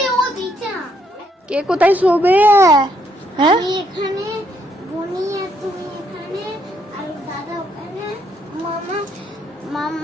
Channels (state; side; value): normal; both; correlation 0.72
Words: ও দিচ্ছে না কে কোথায় শোবে? হ্যাঁ আমি এখানে বনি আর তুমি এখানে আর দাদা ওখানে মামা